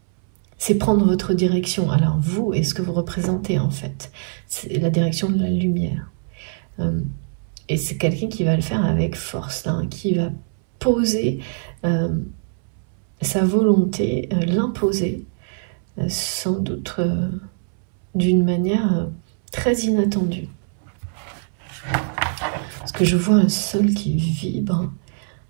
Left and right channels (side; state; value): left; silent; 64 dB below the other